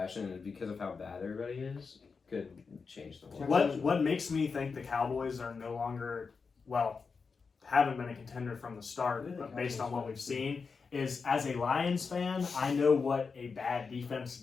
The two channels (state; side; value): quieter; right; 5.0 dB